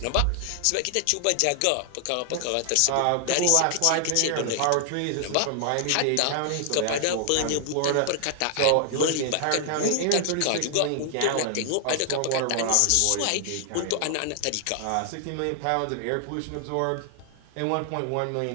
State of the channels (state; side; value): different; both; correlation 0.00